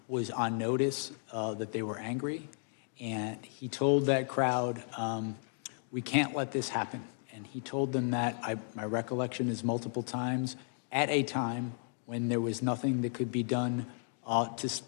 was on notice that they were angry, and he told that crowd, "We can't let this happen." And he told them that, my recollection is multiple times, at a time when there was nothing that could be done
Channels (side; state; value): right; silent; 55 dB below the other